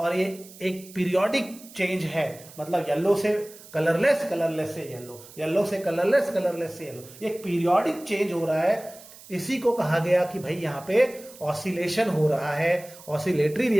ये एक पीरियोडिक चेंज है। मतलब येलो से कलरलेस, कलरलेस से येलो, येलो से कलरलेस, कलरलेस से येलो, एक पीरियोडिक चेंज हो रहा है। इसी को कहा गया कि भाई यहाँ पे ऑसिलेशन हो रहा है, ऑसिलेटरी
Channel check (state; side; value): noise; right; hiss, 20 dB below the sound